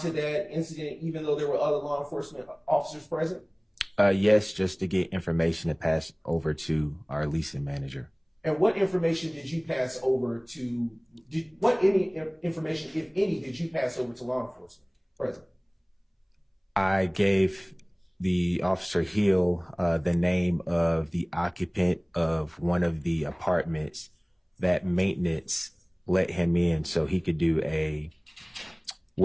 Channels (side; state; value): both; identical; correlation 1.00